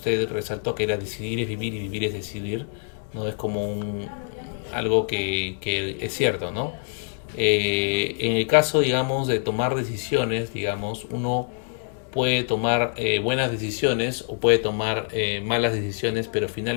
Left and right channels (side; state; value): right; silent; 62 dB below the other